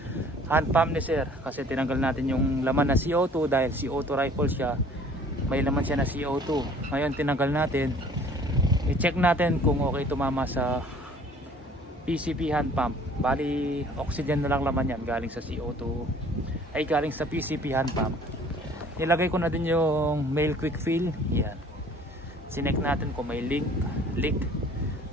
hand pump ni Sir, kasi tinanggal natin yung laman na CO2 dahil CO2 rifle siya. May laman siya na CO2. Ngayon tinanggal natin. I-check natin kung okay tumama sa PCP hand pump. Bali oxygen na lang laman yan galing sa CO2, ay galing sa PCP hand pump. Nilagay ko na din yung male quick fill. Yan. Sinek natin kung may leak.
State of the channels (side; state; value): both; normal; correlation 0.52